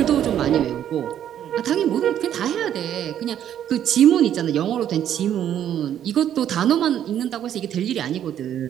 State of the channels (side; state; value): left; quieter; 10.4 dB